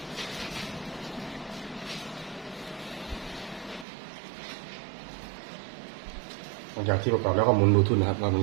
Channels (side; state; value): left; drops out; at 3.9 s